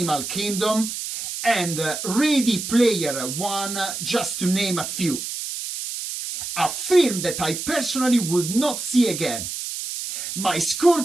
Kingdom and Ready Player One, just to name a few. A film that I personally would not see again. My score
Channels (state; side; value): noise; right; hiss, 6 dB below the sound